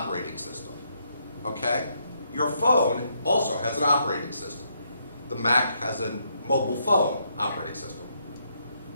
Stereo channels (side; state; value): both; inverted; correlation -0.76